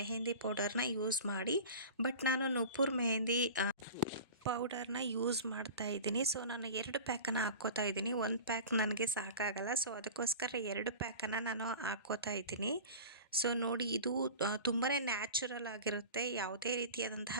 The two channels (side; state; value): both; inverted; correlation -0.35